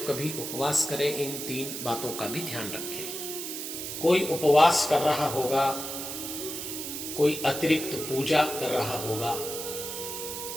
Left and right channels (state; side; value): noise; right; hiss, 6 dB below the sound